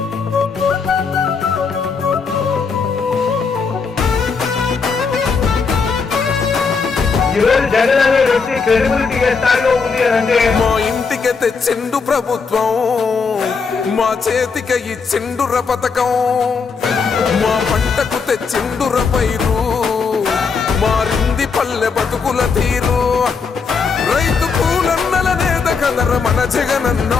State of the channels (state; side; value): quieter; right; 5.2 dB